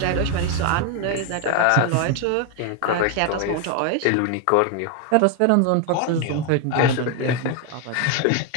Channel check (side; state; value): both; different; correlation 0.01